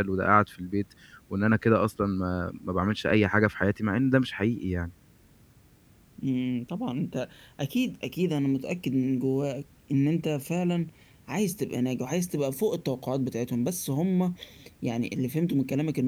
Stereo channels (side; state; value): both; identical; correlation 1.00